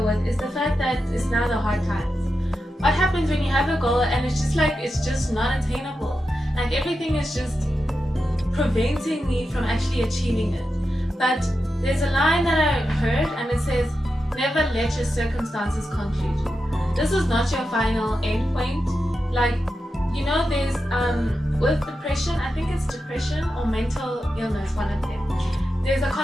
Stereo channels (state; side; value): normal; both; correlation 0.89